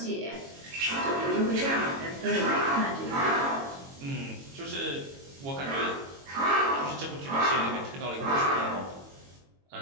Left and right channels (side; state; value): left; late; 22 ms